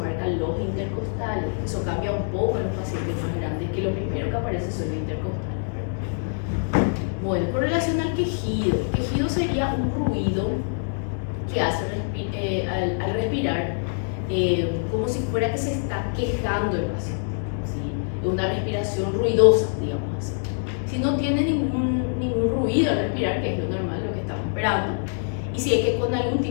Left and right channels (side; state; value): right; silent; digital silence